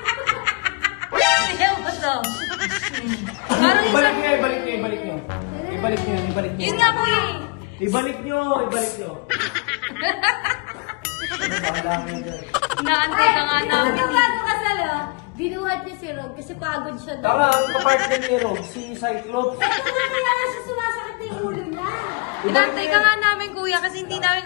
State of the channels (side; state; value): right; quieter; 29.3 dB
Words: Tingnan mo to. Parang isa. Ibalik nyo, ibalik nyo, ibalik nyo. Ibalik nyo, ibalik nyo. Yun nga kuya eh. Ibalik nyo, ibalik nyo. Bahala kayo dyan. Naantay ka nga Tingnan mo namin. ito bagong kasal oh. Binuhat niya si Rog kasi pagod siya doon. Tama, ang kapartner ni Rog, si Cyclops. Ito nga kaya nga siya sumasakit na yung ulo niya. Inantay ka nga namin kuya kasi hindi namin